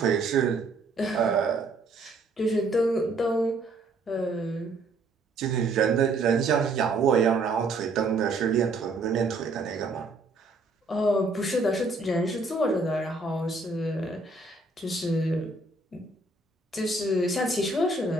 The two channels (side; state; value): left; quieter; 3.1 dB